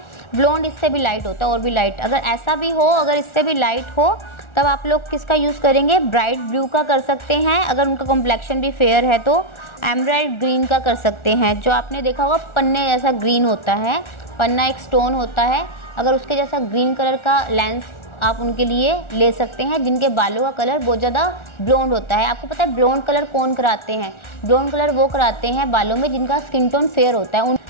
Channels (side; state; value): right; late; 1.4 ms